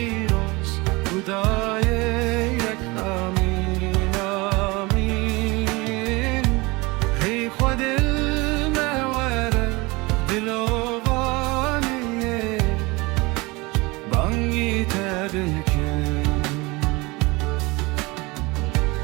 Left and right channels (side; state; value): left; quieter; 24.2 dB